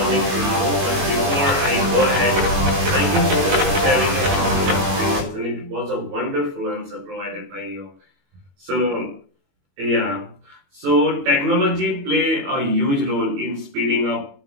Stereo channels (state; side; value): late; left; 21 ms